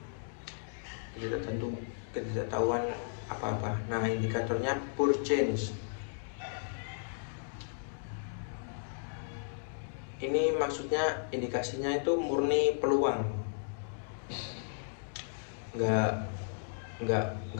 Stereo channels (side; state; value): right; silent; digital silence